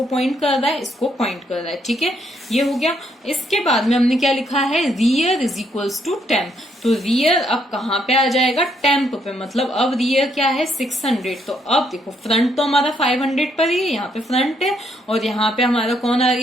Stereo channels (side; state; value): both; normal; correlation 0.73